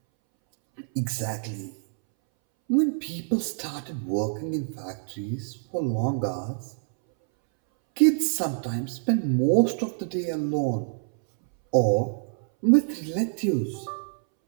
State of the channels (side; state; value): left; silent; 61 dB below the other